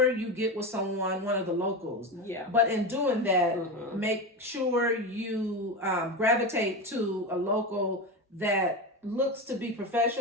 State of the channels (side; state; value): both; normal; correlation 0.20